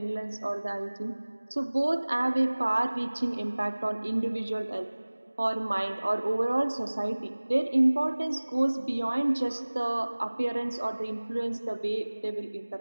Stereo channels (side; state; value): both; inverted; correlation -1.00